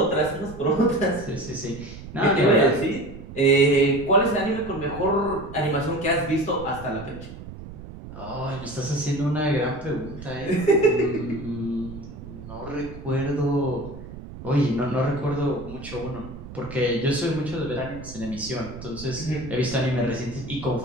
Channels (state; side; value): noise; right; rumble, 13 dB below the sound